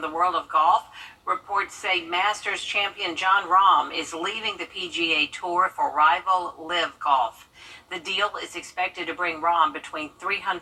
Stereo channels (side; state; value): both; identical; correlation 1.00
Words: world of golf. Reports say Masters champion Jon Rahm is leaving the PGA Tour for rival Live Golf. The deal is expected to bring Rahm between